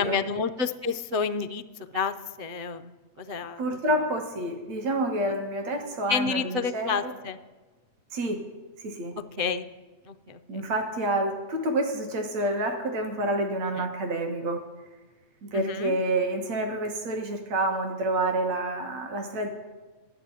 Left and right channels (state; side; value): late; left; 8.0 ms